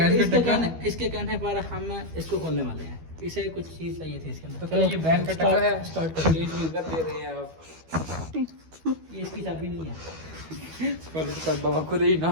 का इसके टक्का इसके कहने पर हम इसको खोलने वाले हैं। इसे कुछ चीज चाहिए थी इसके अंदर। तो क्या ये बैन का टक्का है? स्टार्ट कर। स्टेज में इज्जत दे रहे हैं आप। ये इसकी चाबी नहीं है। पर बाबा खुद ही ना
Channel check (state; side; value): late; left; 12 ms